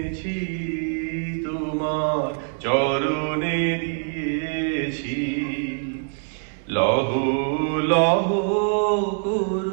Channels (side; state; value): left; silent; 63 dB below the other